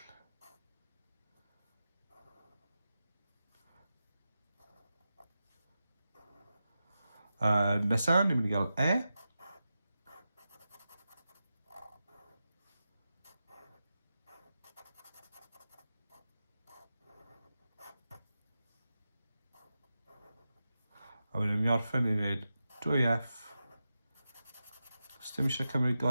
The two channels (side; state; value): both; inverted; correlation -0.91